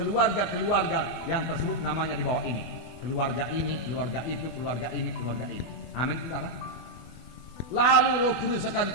yang tersebut namanya di bawah ini. Keluarga ini, keluarga itu, keluarga ini, keluarga ini. Amin, saudara. Lalu Roh Kudus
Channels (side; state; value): right; late; 24 ms